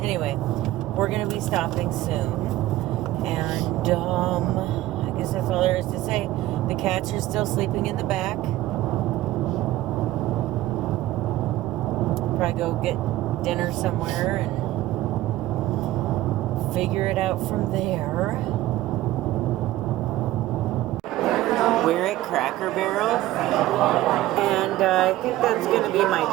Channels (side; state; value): left; quieter; 15.7 dB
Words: anyway, we're gonna be stopping soon, and I guess that's all there is to say. The cats are still sleeping in the back. Probably go get dinner somewhere and figure it out from there. We're at Cracker Barrel, and I think that's going to be my